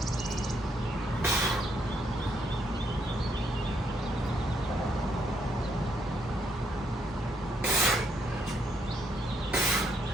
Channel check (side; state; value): both; normal; correlation 0.74